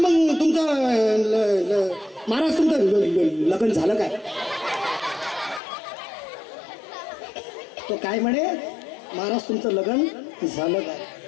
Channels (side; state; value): right; drops out; at 5.6 s